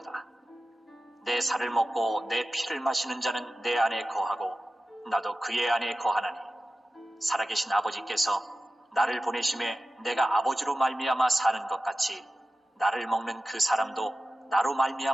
내 살을 먹고 내 피를 마시는 자는 내 안에 거하고 나도 그의 안에 거하나니 살아계신 아버지께서 나를 보내심에 내가 아버지로 말미암아 사는 것 같이 나를 먹는 그 사람도 나로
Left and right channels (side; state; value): both; normal; correlation 0.94